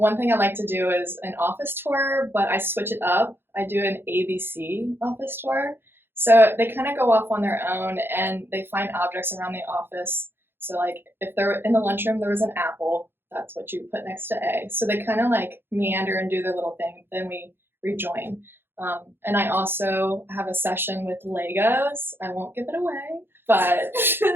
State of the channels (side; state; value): left; late; 0.10 ms